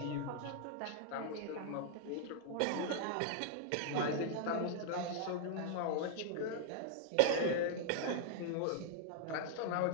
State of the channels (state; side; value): different; both; correlation -0.01